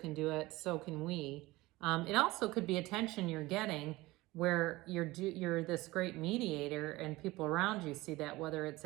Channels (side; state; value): left; quieter; 19.8 dB